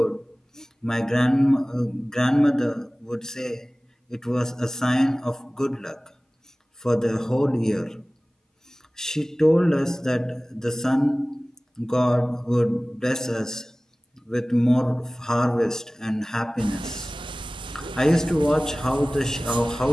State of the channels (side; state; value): both; normal; correlation 0.98